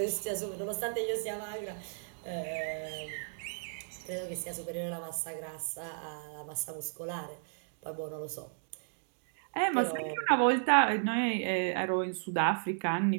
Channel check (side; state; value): left; silent; digital silence